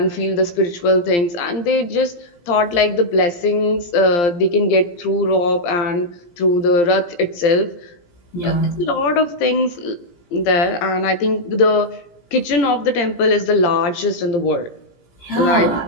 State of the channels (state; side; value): late; right; 17 ms